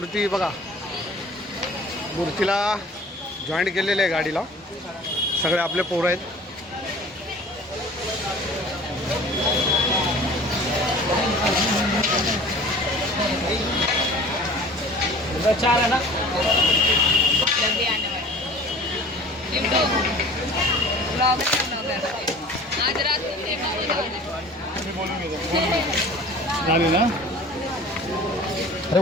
बघा मूर्तीला जॉईंट केलेले आहे गाडीला सगळे आपले पोरं आहेत चार है ना जल्दी आने वाला लिंटो ब्लॉग आज रात को देखा झाले ना अरे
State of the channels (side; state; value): both; normal; correlation 0.45